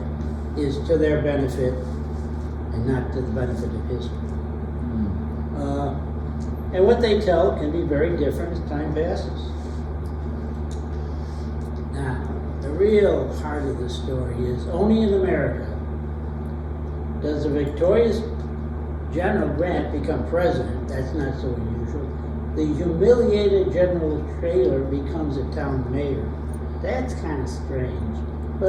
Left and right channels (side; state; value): both; identical; correlation 1.00